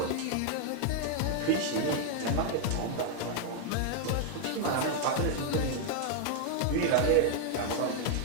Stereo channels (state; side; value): different; both; correlation 0.00